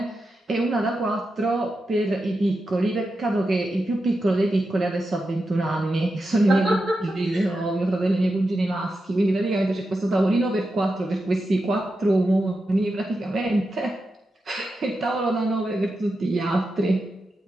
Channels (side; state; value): both; normal; correlation 0.89